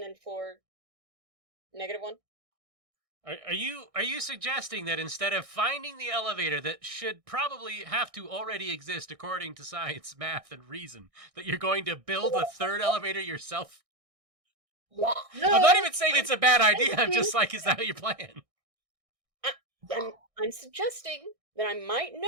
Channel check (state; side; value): late; left; 1.6 ms